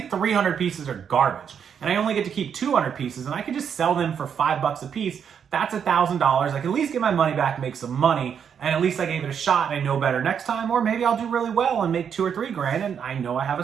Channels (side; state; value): left; quieter; 7.7 dB